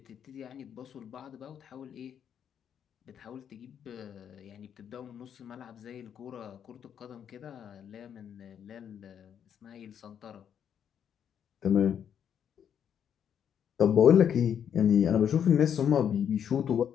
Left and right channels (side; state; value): right; quieter; 8.6 dB